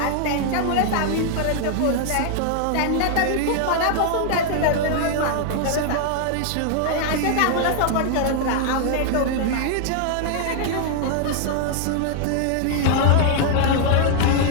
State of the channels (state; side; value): different; both; correlation -0.01